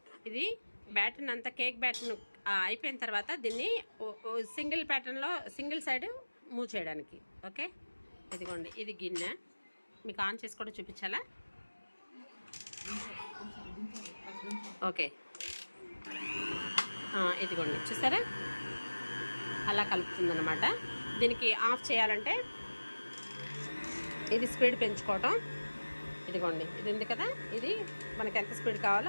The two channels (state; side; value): inverted; both; correlation -1.00